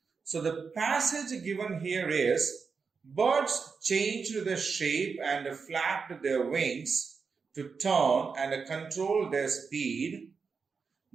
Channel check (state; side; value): quieter; left; 5.3 dB